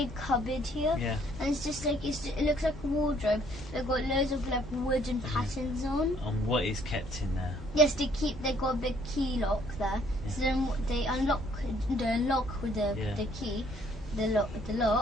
cupboard here, Yeah. and it's just it looks like a wardrobe. They've got loads of wooden patterns on. And what is kept in there? Yes, they got a big key lock there. So then they unlock the lock with the key, the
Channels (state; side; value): normal; both; correlation 0.63